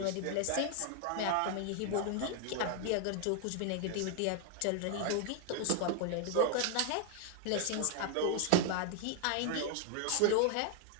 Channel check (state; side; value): different; both; correlation 0.00